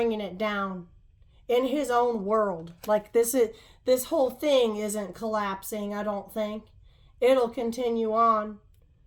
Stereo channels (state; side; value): identical; both; correlation 1.00